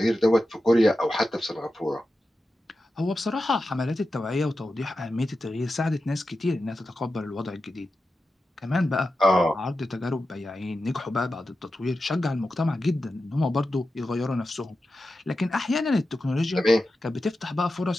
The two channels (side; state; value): both; normal; correlation 0.92